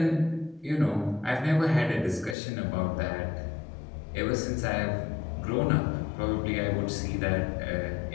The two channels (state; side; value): drops out; right; at 2.4 s